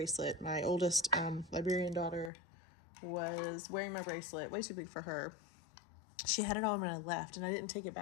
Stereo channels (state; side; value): drops out; right; at 2.3 s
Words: My oldest Liberian daughter was wearing my bracelet, way too big for her. She had it on when I left, and I didn't take it